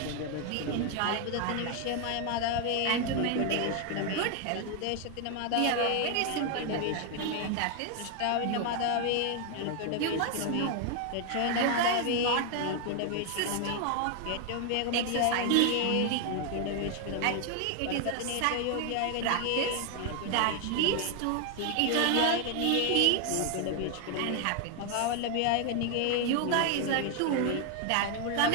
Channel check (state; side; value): different; both; correlation 0.01